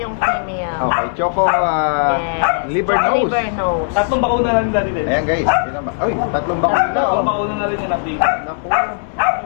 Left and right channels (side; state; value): right; silent; 64 dB below the other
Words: female. Okay, Choco Yes. liver nose. Liver nose. Tatlong bakuna na rin dati din. Ayan guys. Yun naman. Uy, tatlong bakuna. Tatlong Oh. bakuna na rin yung update. Naku.